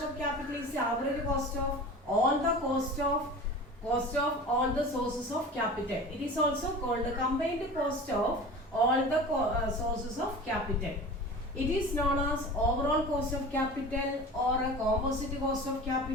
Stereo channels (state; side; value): normal; both; correlation 0.36